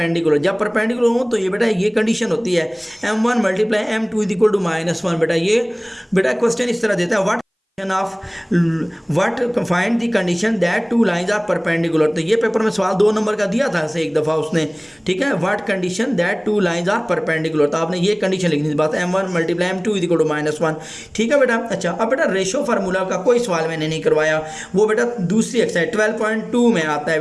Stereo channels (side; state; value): both; identical; correlation 1.00